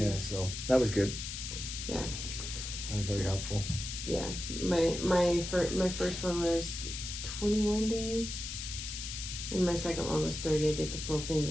so that was good. Yeah. That was very helpful. Yeah. My first one was 21 days. And my second one was 30. I did the full thing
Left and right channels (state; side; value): noise; left; hiss, 6 dB below the sound